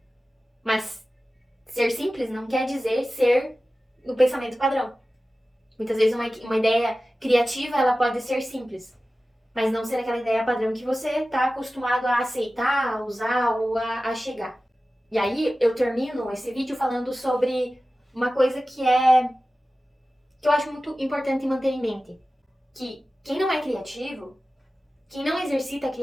Mas ser simples não quer dizer ser no pensamento padrão. Muitas vezes uma ideia criativa ela pode ser simples, mas não ser aquela ideia padrão que você está acostumado a aceitar, a usar ou a chegar. E aí eu termino esse vídeo falando sobre uma coisa que eu acho muito importante manter em mente. Que quem não é criativo, Quem não exercita a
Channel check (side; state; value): both; normal; correlation 0.95